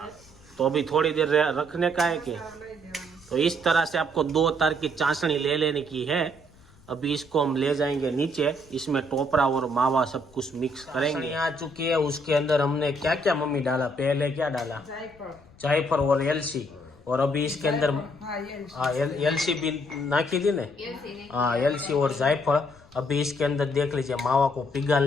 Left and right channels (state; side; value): noise; left; rumble, 26 dB below the sound